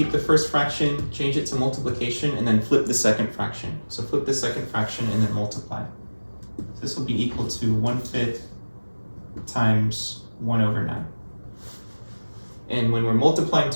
the first fraction, change it to multiplication, and then flip the second fraction. So flip the second fraction and then multiply. So this will be equal to 1/5 times 1 over 9. And when we're multiplying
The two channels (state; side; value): inverted; both; correlation -1.00